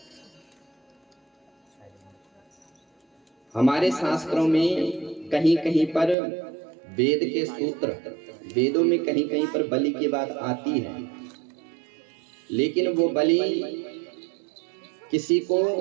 हमारे शास्त्रों में कहीं कहीं पर वेद के सूत्र, वेदों में कहीं कहीं पर बलि की बात आती है, लेकिन वो बलि किसी को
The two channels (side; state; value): left; drops out; at 6.2 s